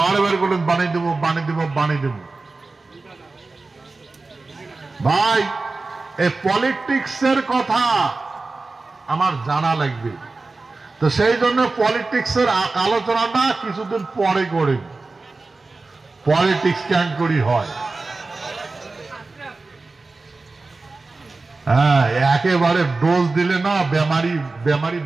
বারে বারে করলেন বানিয়ে দেবো বানিয়ে দেবো বানিয়ে দেবো। ভাই, এই পলিটিক্সের কথা আমার জানা লাগবে, তো সেই জন্য পলিটিক্সের আলোচনাটা কিছুদিন পরে করে। পলিটিক্স কেন করি হয়? হ্যাঁ, একেবারে ডোজ দিলে না বেমারি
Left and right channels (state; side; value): quieter; left; 3.6 dB